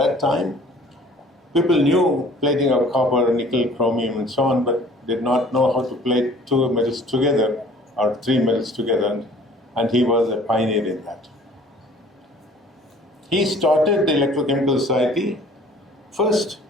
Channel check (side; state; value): both; normal; correlation 0.51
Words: time, people knew plating of copper, nickel, chromium, and so on, but did not know how to plate two metals together or three metals together, and he was a pioneer in that. He started the Electrochemical Society first